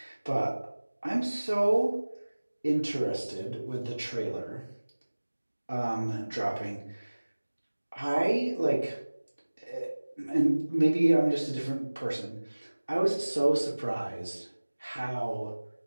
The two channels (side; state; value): both; inverted; correlation -1.00